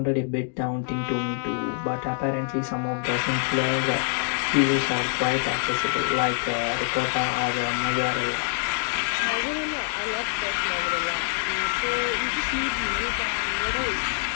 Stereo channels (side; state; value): right; silent; digital silence